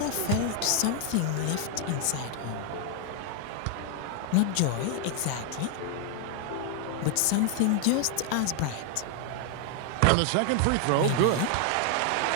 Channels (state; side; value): different; both; correlation 0.00